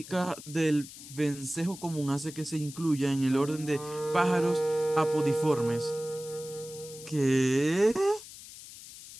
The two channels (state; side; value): noise; left; hiss, 15 dB below the sound